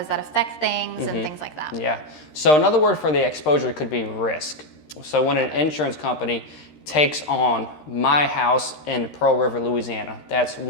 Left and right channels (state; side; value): late; right; 13 ms